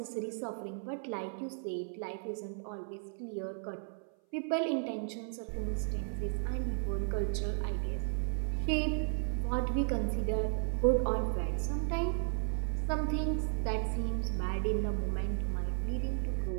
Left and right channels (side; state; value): left; silent; 55 dB below the other